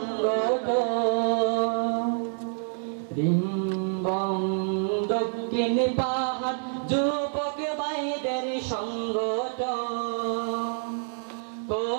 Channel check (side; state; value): left; silent; digital silence